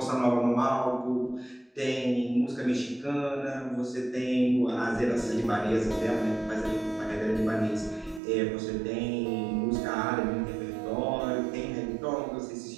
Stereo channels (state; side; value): drops out; left; at 8.2 s